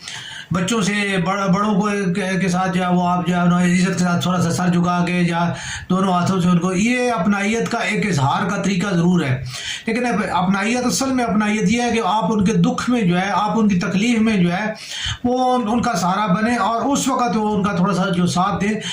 بچوں سے بڑوں کو کے ساتھ جو ہے وہ آپ جو ہے عزت کے ساتھ تھوڑا سا سر جھکا کے یا دونوں ہاتھوں سے ان کو، یہ اپنائیت کا ایک اظہار کا طریقہ ضرور ہے. لیکن اپنائیت اصل میں اپنائیت یہ ہے کہ آپ ان کے دکھ میں جو ہے، آپ ان کی تکلیف میں جو ہے وہ ان کا سہارا بنے اور اس وقت وہ ان کا تھوڑا سا جو ساتھ دے.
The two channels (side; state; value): both; identical; correlation 1.00